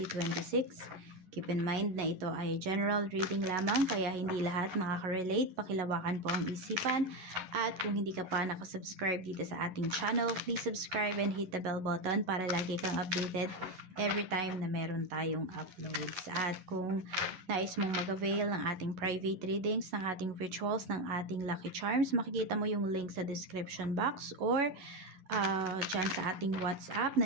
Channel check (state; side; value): late; left; 11 ms